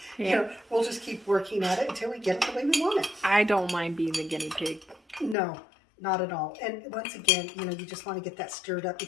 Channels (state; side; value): drops out; right; at 5.4 s